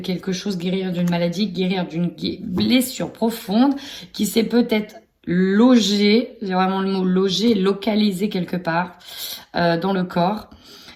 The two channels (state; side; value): identical; both; correlation 1.00